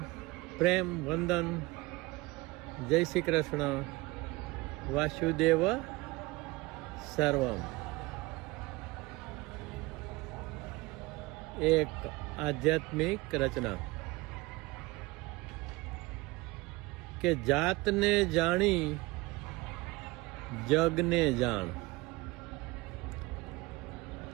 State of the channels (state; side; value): quieter; left; 22.0 dB